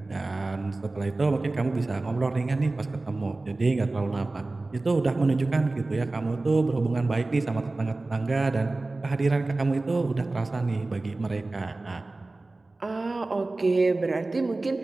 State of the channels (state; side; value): quieter; left; 3.2 dB